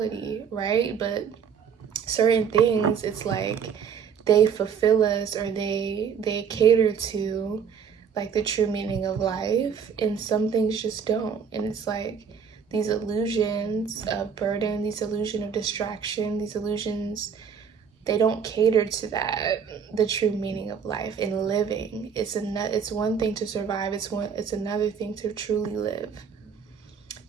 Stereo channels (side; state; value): left; quieter; 6.9 dB